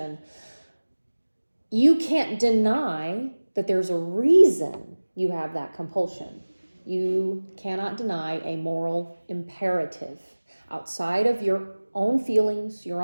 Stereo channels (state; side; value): inverted; both; correlation -1.00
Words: you can't deny that there's a reason you have that compulsion. You cannot deny a moral imperative outside of your own feelings, your